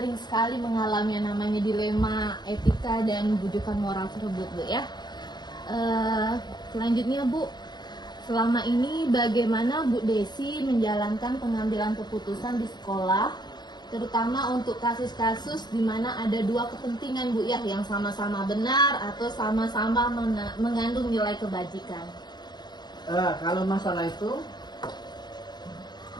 sekali mengalami yang namanya dilema etika dan bujukan moral tersebut Bu ya. Selanjutnya Bu, selama ini bagaimana Bu Desi menjalankan pengambilan keputusan di sekolah, terutama untuk kasus-kasus di mana ada dua kepentingan Bu ya, yang sama-sama benar atau sama-sama mengandung nilai kebajikan? Kalau masalah itu,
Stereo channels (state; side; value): late; right; 0.21 ms